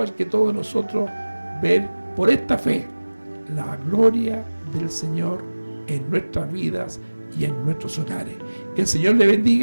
que todos nosotros, ver por esta fe la gloria del Señor en nuestras vidas y en nuestros hogares. Que el Señor le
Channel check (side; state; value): both; inverted; correlation -1.00